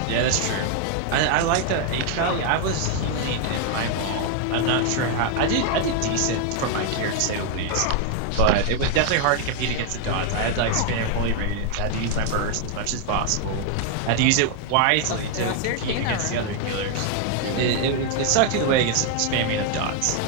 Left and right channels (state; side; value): different; both; correlation 0.00